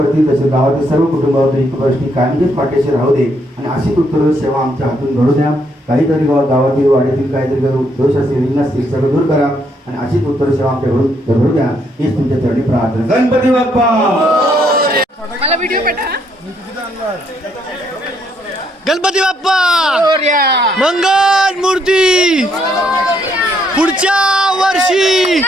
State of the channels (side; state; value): both; normal; correlation 0.72